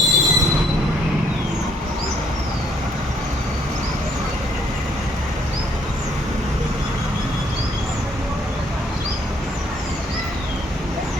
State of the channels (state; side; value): normal; both; correlation 0.67